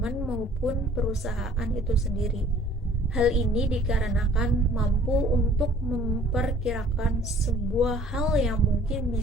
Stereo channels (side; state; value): both; normal; correlation 0.54